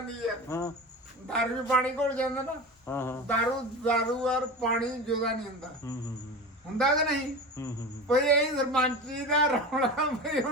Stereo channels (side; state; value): both; normal; correlation 0.29